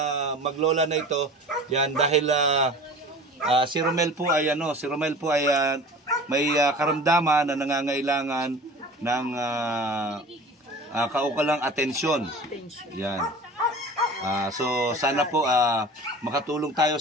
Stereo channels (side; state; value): both; normal; correlation 0.39